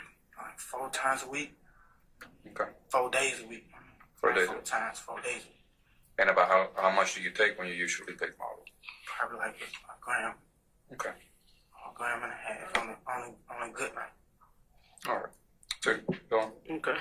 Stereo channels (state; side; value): identical; both; correlation 1.00